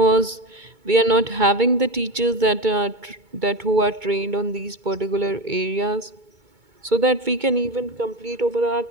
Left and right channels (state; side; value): late; left; 2.2 ms